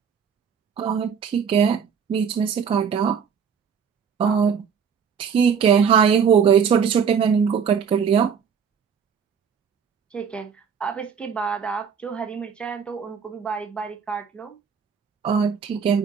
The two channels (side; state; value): left; quieter; 6.9 dB